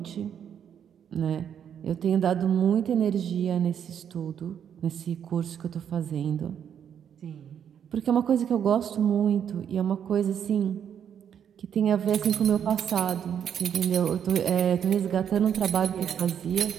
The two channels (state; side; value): quieter; left; 8.6 dB